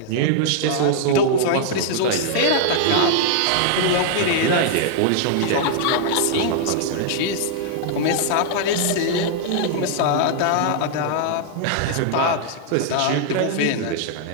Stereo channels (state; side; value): different; both; correlation -0.01